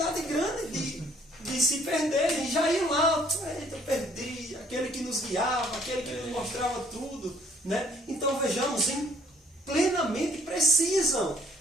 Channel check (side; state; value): both; normal; correlation 0.61